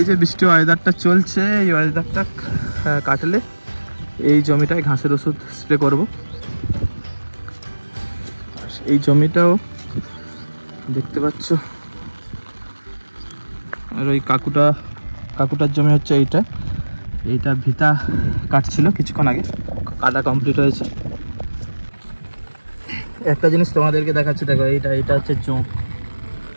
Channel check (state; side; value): inverted; both; correlation -1.00